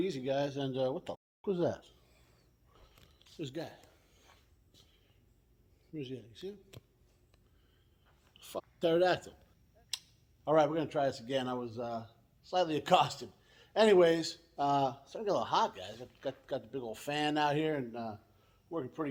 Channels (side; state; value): both; identical; correlation 1.00